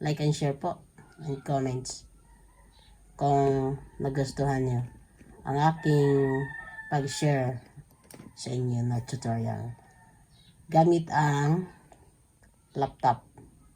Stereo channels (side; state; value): both; identical; correlation 1.00